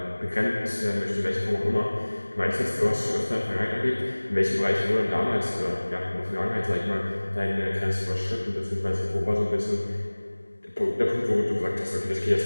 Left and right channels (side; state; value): both; inverted; correlation -1.00